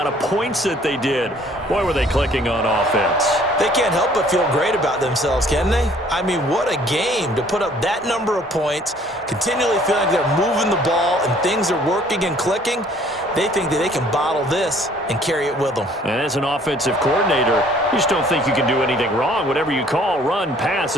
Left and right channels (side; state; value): both; normal; correlation 0.58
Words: of points that they did. Boy, were they clicking on offense. They can't help but feel great about themselves, can they? I mean, what a game to put up that number of points, continually feeling like they're moving the ball and things are working and clicking. They think that they can bottle this and carry it with them. And as an offensive coordinator, you just don't think you can do anything wrong. Whatever you call, run, pass,